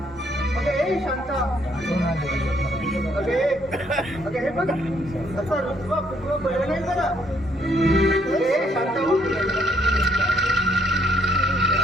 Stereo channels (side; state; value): both; normal; correlation 0.69